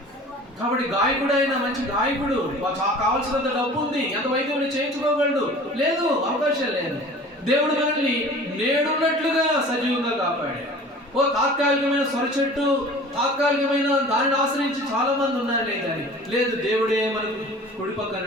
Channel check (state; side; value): normal; both; correlation 0.43